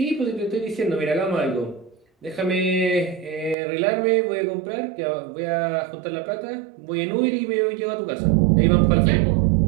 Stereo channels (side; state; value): left; drops out; at 3.6 s